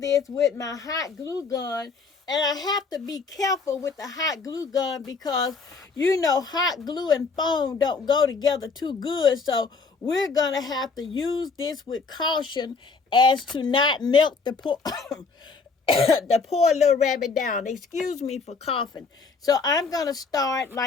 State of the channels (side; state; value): right; quieter; 4.6 dB